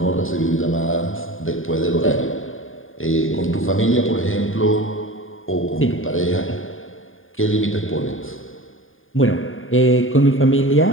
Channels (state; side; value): late; right; 0.59 ms